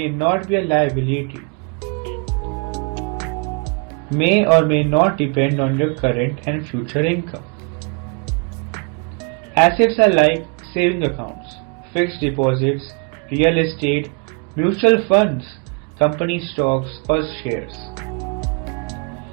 not be a liability. May or may not depend on your current and future income. Assets are like saving accounts, fixed deposits, real estate, mutual funds, company stocks or shares.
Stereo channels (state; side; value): quieter; left; 36.4 dB